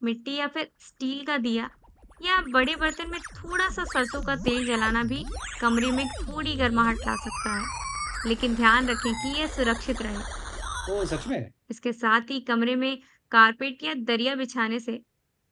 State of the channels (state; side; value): identical; both; correlation 1.00